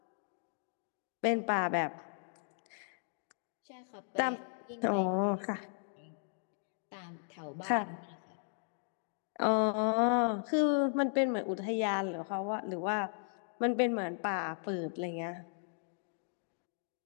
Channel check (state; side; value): silent; right; digital silence